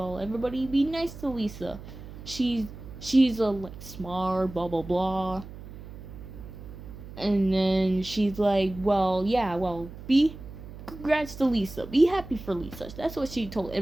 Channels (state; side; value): noise; right; hum, 14 dB below the sound